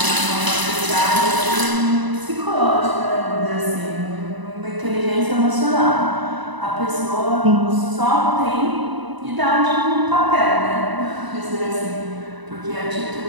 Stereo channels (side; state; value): left; late; 1.0 ms